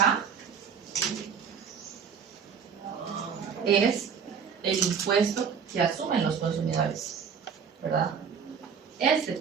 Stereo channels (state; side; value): quieter; left; 6.8 dB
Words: es el impuesto que asumen los consumidores, ¿verdad? Este